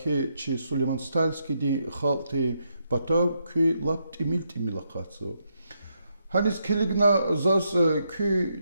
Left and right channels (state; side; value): inverted; both; correlation -0.79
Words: че Сулейман Стальский день халты Батав күй лап тимилакацо. Hanis keligna zas